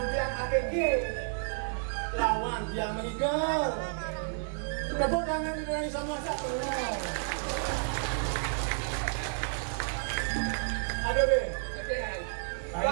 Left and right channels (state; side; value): silent; left; 57 dB below the other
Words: tiang APG. Lawan tiang mengigal. Tepuk tangan dari sama satu. Ada be.